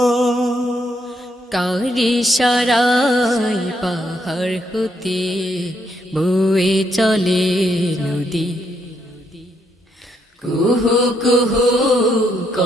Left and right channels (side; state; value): both; normal; correlation 0.75